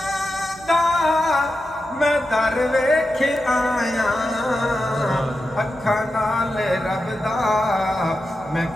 دا میں در ویکھ آیا، اکھاں نال رب دا میں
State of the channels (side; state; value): both; normal; correlation 0.89